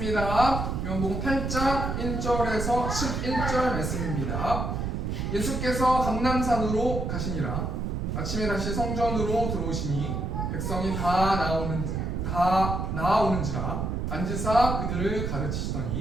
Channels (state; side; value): noise; right; rumble, 2 dB below the sound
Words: 요한복음 8장 1절에서 11절 말씀입니다. 예수께서 감람산으로 가시니라. 아침에 다시 성전으로 들어오시니 백성이 다 나아오는지라 앉으사 그들을